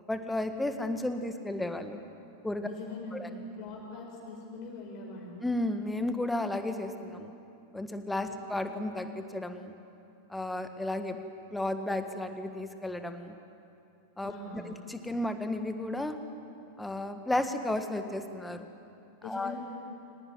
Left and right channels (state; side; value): normal; both; correlation 0.76